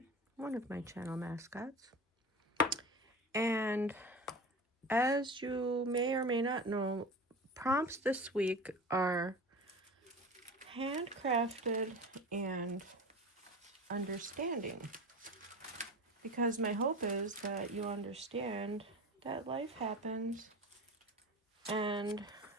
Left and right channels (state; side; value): normal; both; correlation 0.32